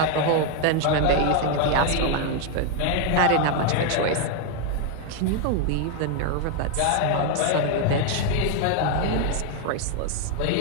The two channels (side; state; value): both; different; correlation 0.01